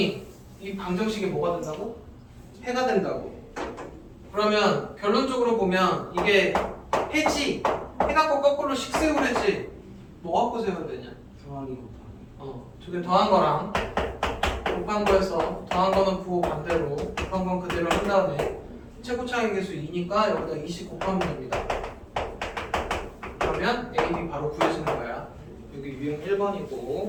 이 방정식이 뭐가 된다고? 해가 된다고. 그러면 결론적으로 보면 이게 해지. 해 갖고 거꾸로 식 세우래지. 뭐 갖고 세워야 되냐? 더하기 곱하기. 저게 더한 거랑 곱한 거에서 더한 거는 부호 반대로 곱한 건 그대로 한 다음에 최고차의 계수 2니까 여기다 20 곱하면 됩니다. 그러면 A, B 바로 구해지는 거야. 여기 유형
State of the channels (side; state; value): both; identical; correlation 1.00